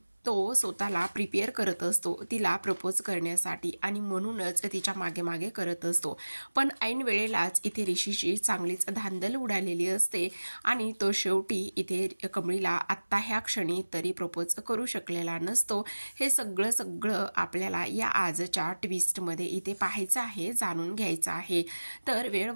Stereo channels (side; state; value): both; inverted; correlation -1.00